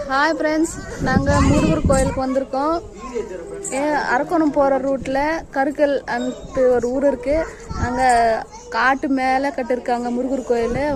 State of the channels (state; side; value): identical; both; correlation 1.00